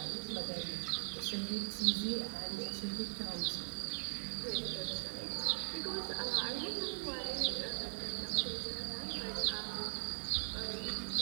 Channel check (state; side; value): silent; left; digital silence